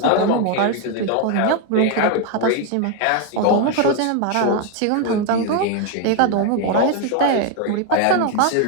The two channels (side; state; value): both; different; correlation 0.01